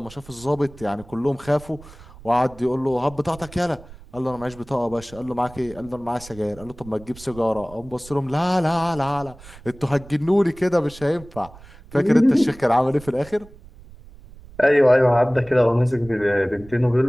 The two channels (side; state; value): right; noise; rumble, 20 dB below the sound